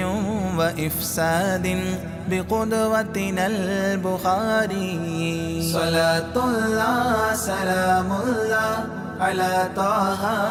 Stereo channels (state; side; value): identical; both; correlation 1.00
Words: وإفساد بقدوتنا البخاري صلاة الله سلام الله على طه